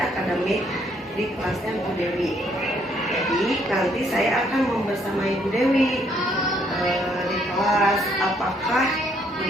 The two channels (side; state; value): both; normal; correlation 0.69